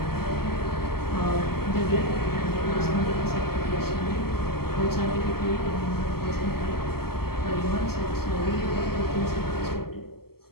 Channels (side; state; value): right; late; 0.95 ms